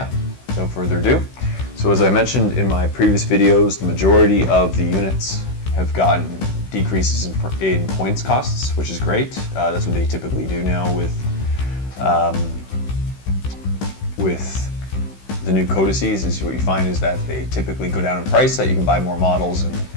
without further ado. So as I mentioned in my previous videos, the majority of the units have gotten decreases in points costs, which is great. That's what they typically do now with the new codices. Is what you find is that they typically go down in price, that you can buy more models and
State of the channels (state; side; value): late; right; 16 ms